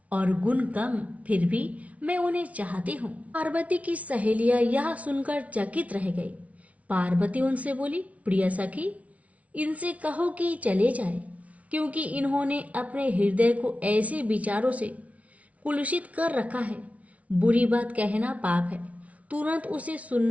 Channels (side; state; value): left; late; 0.067 ms